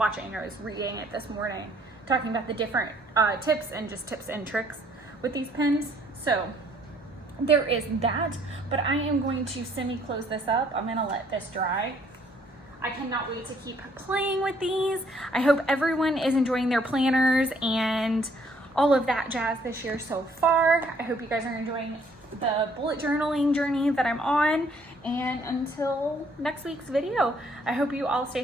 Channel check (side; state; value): both; normal; correlation 0.64